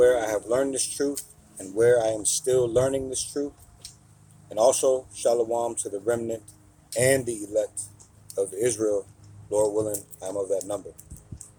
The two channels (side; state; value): both; identical; correlation 1.00